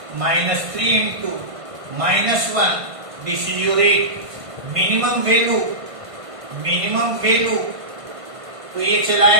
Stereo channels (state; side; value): late; left; 1.5 ms